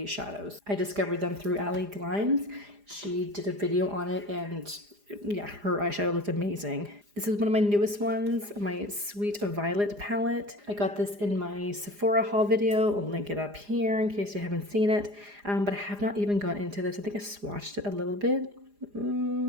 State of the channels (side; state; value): left; late; 4.9 ms